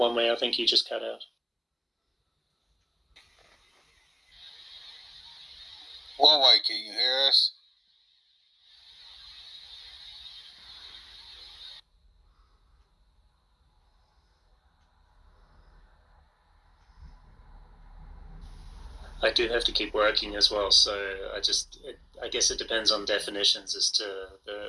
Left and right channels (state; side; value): identical; both; correlation 1.00